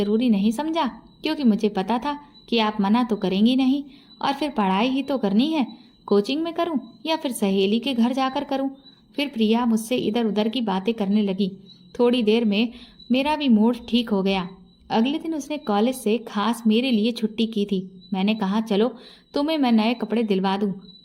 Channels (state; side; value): identical; both; correlation 1.00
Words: नहीं समझा क्योंकि मुझे पता था कि आप मना तो करेंगी नहीं। और फिर पढ़ाई ही तो करनी है, कोचिंग में करूं या फिर सहेली के घर जाकर करूं। फिर प्रिया मुझसे इधर उधर की बातें करने लगी। थोड़ी देर में मेरा भी मूड ठीक हो गया। अगले दिन उसने कॉलेज से खास मेरे लिए छुट्टी की थी। मैंने कहा, चलो तुम्हें मैं नए कपड़े दिलवा दूं,